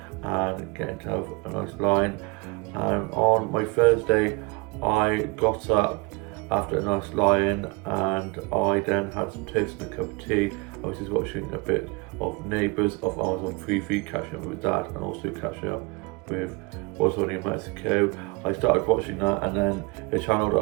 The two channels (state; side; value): quieter; left; 26.6 dB